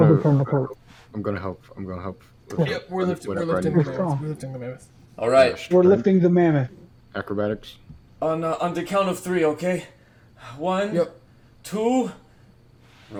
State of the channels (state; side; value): identical; both; correlation 1.00